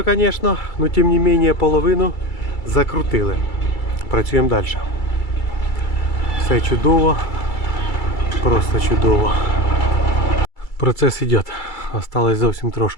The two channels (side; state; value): right; late; 2.3 ms